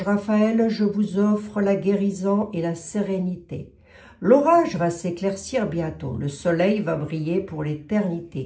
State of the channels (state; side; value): identical; both; correlation 1.00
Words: Raphaël, je vous offre la guérison et la sérénité. L'orage va s'éclaircir bientôt, le soleil va briller pour